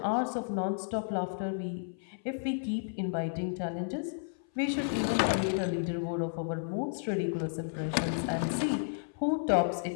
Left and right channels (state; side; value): silent; right; 56 dB below the other